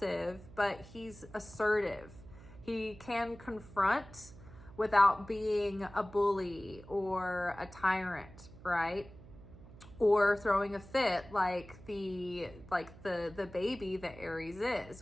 but he's assertive. He can confront without being a bully or a tyrant, right? Or throwing a fit like the baby that Aries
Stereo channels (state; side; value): noise; right; hum, 19 dB below the sound